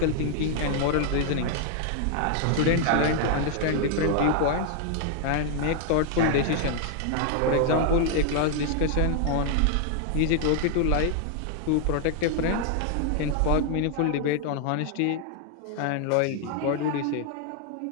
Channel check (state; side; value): different; both; correlation 0.00